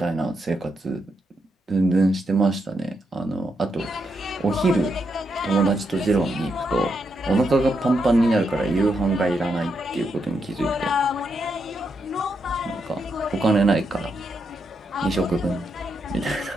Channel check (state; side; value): normal; both; correlation 0.81